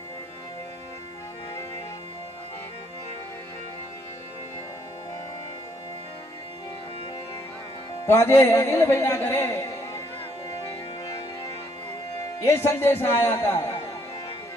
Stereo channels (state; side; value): normal; both; correlation 0.69